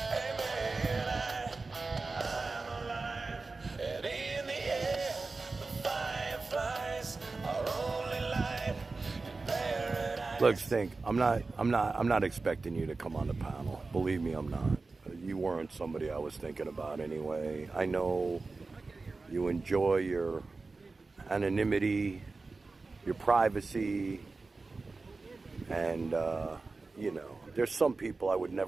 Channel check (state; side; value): quieter; left; 3.8 dB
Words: I'm alive, and in the air, the fireflies are only light in paradise. Look, Stink, I'm not expecting you to come on the panel. Believe me, I'm not. You weren't somebody I was thinking about anyway. I know you enjoy your anonymity, your privacy, and, you know, there's some people I would